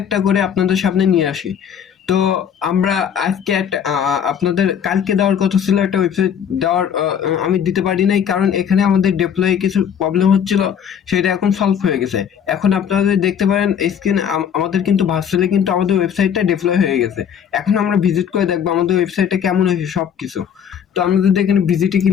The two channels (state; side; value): quieter; right; 8.2 dB